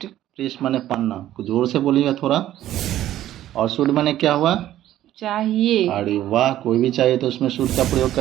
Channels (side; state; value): left; quieter; 13.1 dB